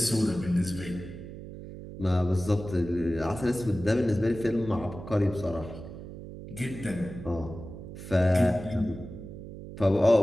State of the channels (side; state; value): right; noise; hum, 12 dB below the sound